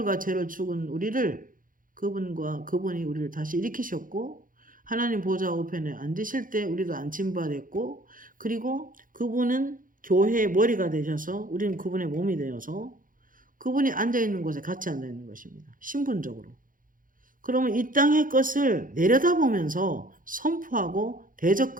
죄로 죽은 우리를 그분이 우리를 다시 일으키셨고 하나님 보좌 우편에 앉으실 때 우리도 앉힌바 됐고, 그리고 그분은 교회의 머리가 되셔서 우리는 그분의 몸이 되어서 그분이 앉아있는 곳에 같이 앉아있는 것입니다. 신분적으로. 그러면 이 땅의 것을 내려다보면서 선포하고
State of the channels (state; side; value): late; left; 0.40 ms